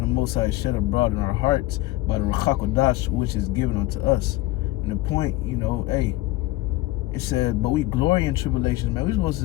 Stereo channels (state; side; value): quieter; right; 18.0 dB